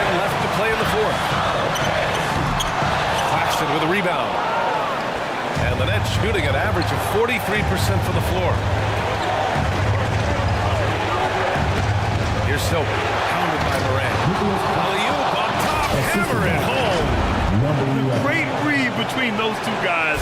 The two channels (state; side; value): identical; both; correlation 1.00